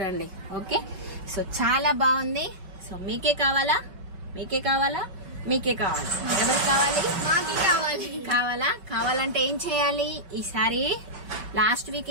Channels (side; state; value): left; late; 5.3 ms